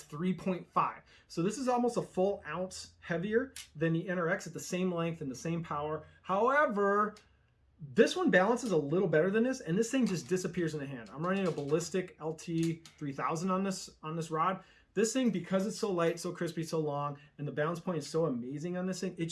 3.5. So this is almost a full ounce heavier than the NRX at the same length and the same power. However, this one balances a little better than this, and this thing just disappears in the hand. I'm running a Ballistic LT 3000 on this rod. This thing, because it's so light, so crispy, so long, and the balance point is so amazing on this thing, it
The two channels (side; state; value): both; identical; correlation 1.00